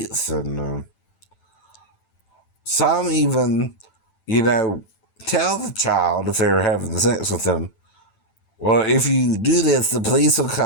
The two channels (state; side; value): late; right; 9.0 ms